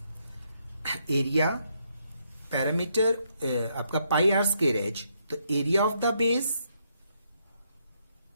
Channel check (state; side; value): inverted; both; correlation -0.76